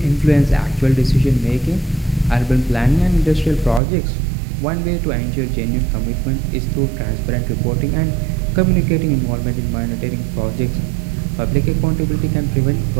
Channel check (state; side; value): drops out; left; at 3.8 s